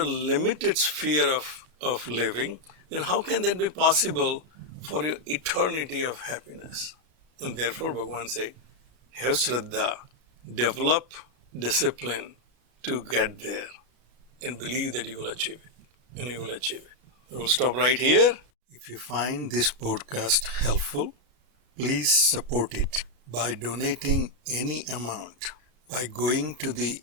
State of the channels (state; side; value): late; left; 33 ms